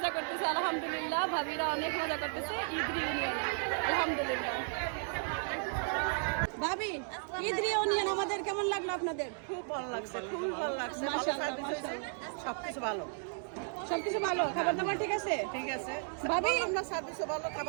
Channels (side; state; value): left; silent; 55 dB below the other